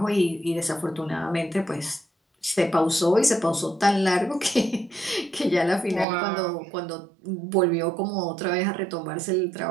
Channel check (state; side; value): drops out; left; at 6.1 s